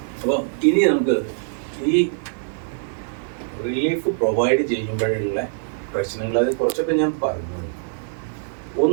അപ്പോൾ ഇനി നമുക്ക് ഈ റിലീഫ് പ്രൊവൈഡ് ചെയ്യുമ്പോഴുള്ള പ്രശ്നങ്ങൾ അത് കുറച്ചൊക്കെ ഞാൻ പറഞ്ഞു.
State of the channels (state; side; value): silent; left; digital silence